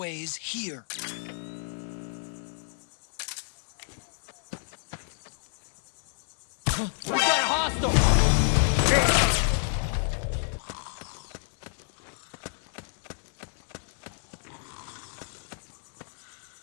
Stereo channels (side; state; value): right; silent; 58 dB below the other